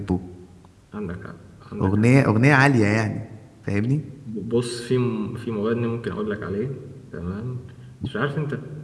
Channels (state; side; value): identical; both; correlation 1.00